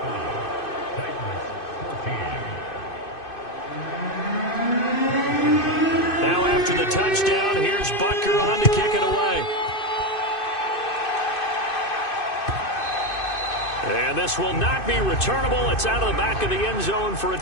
Now after the touchdown, here's Butker on to kick it away. And this will not be returnable. It's out of the back of the end zone for a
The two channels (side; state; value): right; late; 2.5 ms